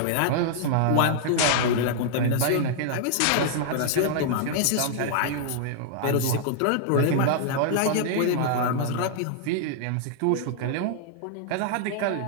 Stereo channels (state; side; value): different; both; correlation -0.01